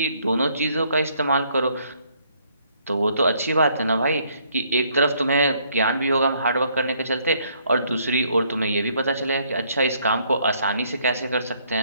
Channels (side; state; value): both; inverted; correlation -0.67